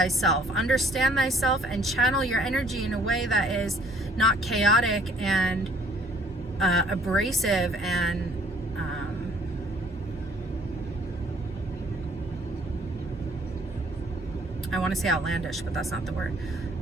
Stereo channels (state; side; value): normal; both; correlation 0.59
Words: understand thyself, and channel your energy in a way that is not chaotic and abrasive and I want to say outlandish, but that's not the word.